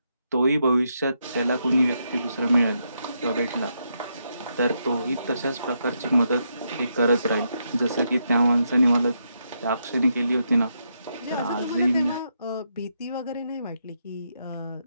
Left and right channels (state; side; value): inverted; both; correlation -0.80